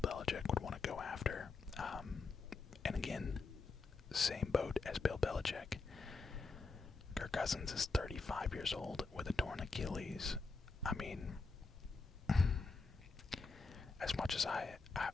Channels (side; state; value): right; quieter; 4.1 dB